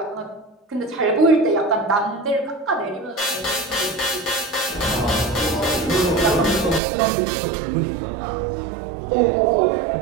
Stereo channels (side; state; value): left; drops out; at 6.8 s